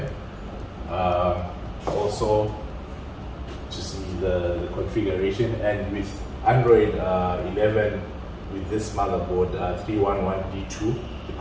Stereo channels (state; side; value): identical; both; correlation 1.00